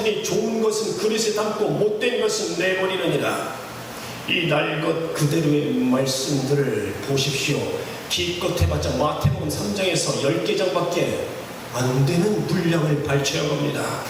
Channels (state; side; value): identical; both; correlation 1.00